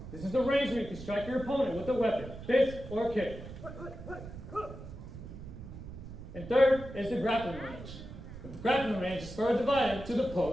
This is the range where you can strike your opponent with a weapon, fist or kick. And third is the grappling range. The grappling range is further divided to the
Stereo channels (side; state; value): right; noise; rumble, 12 dB below the sound